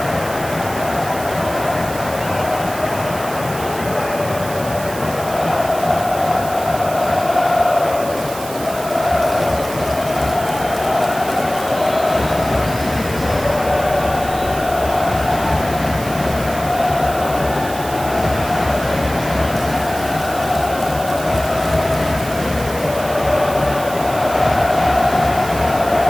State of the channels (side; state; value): right; noise; hiss, 13 dB below the sound